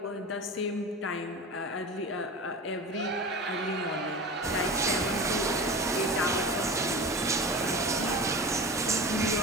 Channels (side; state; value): both; normal; correlation 0.31